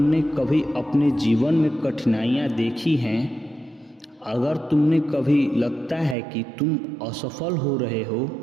कभी अपने जीवन में कठिनाइयाँ देखी हैं, अगर तुमने कभी लगता है कि तुम असफल हो रहे हो,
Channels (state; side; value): drops out; left; at 6.2 s